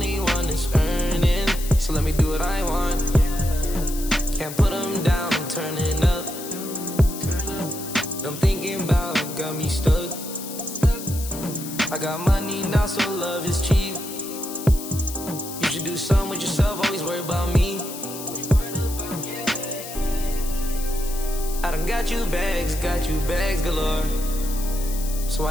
one that's earning, so let me do what I want. Can't put them down, I'm turning up. I'm thinking about got me stuck. I got money now, so love is cheap. You should do something with yourself, always worry about me. I done got you bags galore. So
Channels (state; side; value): noise; left; hiss, 10 dB below the sound